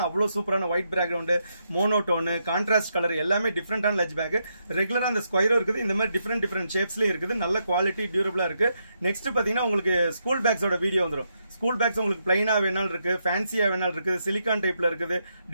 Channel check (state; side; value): inverted; both; correlation -0.81